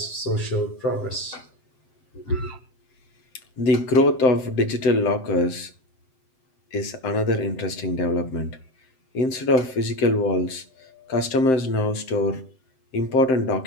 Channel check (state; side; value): late; right; 7.7 ms